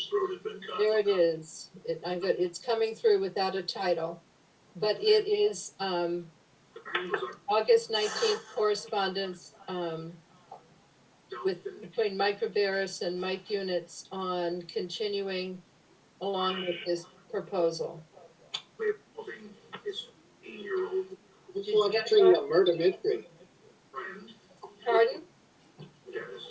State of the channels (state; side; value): identical; both; correlation 1.00